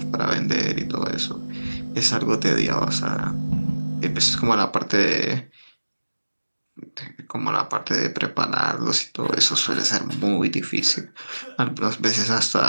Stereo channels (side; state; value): both; inverted; correlation -1.00